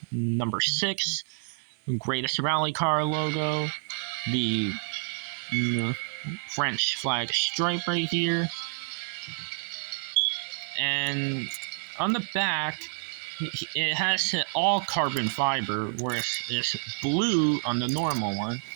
number 6. Greatest Rally Car logo. The French flag stripe right here. And on the back, it has all carbon fiber, whereas it's blue on the normal one.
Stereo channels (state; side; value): silent; left; 59 dB below the other